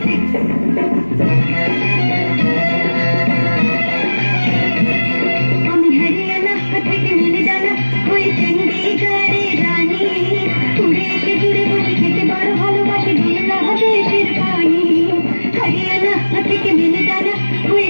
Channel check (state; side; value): inverted; both; correlation -1.00